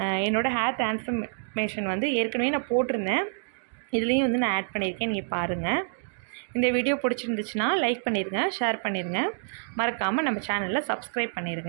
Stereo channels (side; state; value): left; silent; digital silence